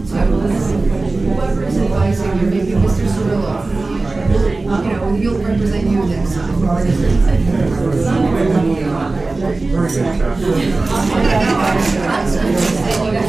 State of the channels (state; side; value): quieter; left; 3.4 dB